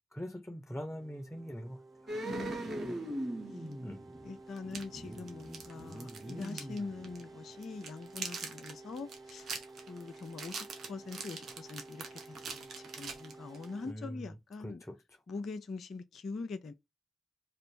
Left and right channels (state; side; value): normal; both; correlation 0.82